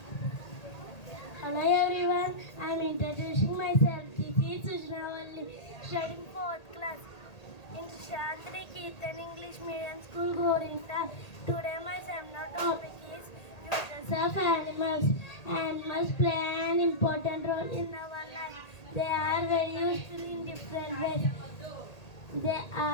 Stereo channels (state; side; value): late; right; 1.8 ms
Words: hello everyone. I am introducing myself. This is Sujanaa, studying 4th class in Shantri Keertan English Medium School, Gorinta. Today my seminar topic is uses of animals. Animals play an important role in our life. They are very useful in different ways. They